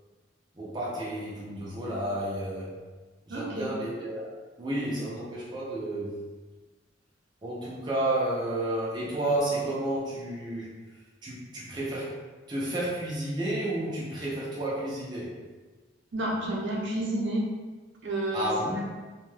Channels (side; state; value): both; normal; correlation 0.38